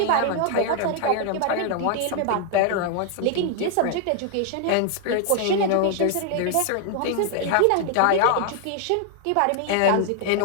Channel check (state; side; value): different; both; correlation 0.00